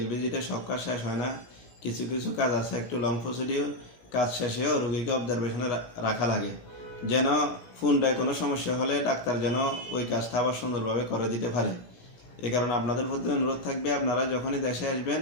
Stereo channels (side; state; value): right; late; 17 ms